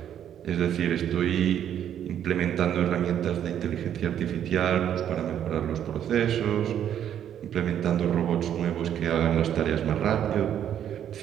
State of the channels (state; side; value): quieter; left; 9.9 dB